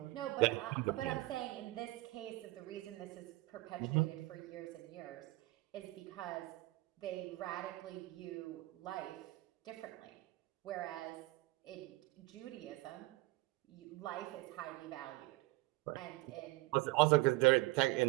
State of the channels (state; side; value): quieter; left; 20.4 dB